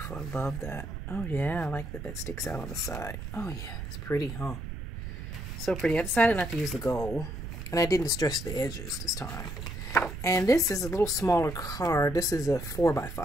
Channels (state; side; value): noise; right; rumble, 7 dB below the sound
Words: I love that. Oh, yeah. I like that that sticks out on the side. Oh, yeah. It's pretty, huh? So pretty. I decided not to use the gold. And I didn't distress the edges this time. And this is a little smaller card. This is a